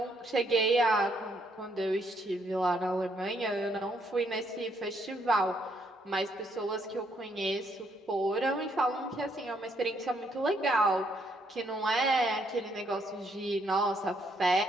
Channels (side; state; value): both; normal; correlation 0.72